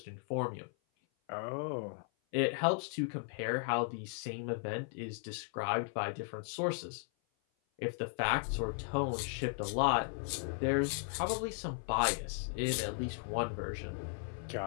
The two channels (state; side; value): silent; right; 53 dB below the other